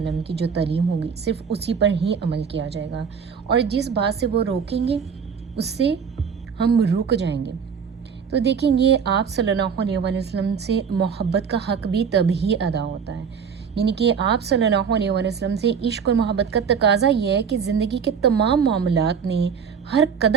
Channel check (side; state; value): left; quieter; 6.7 dB